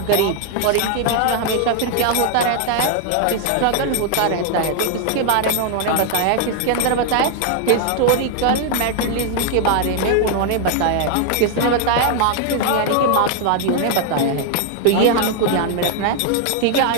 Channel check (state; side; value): different; both; correlation 0.00